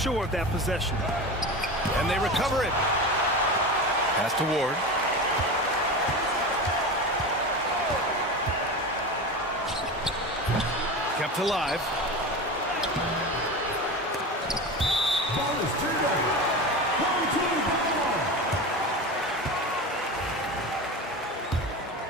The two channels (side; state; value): both; normal; correlation 0.26